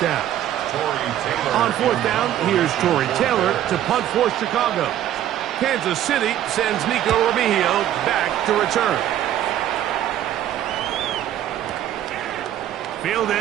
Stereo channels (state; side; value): quieter; left; 11.8 dB